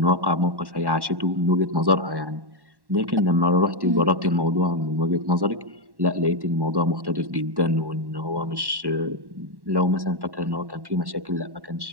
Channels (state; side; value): late; left; 1.1 ms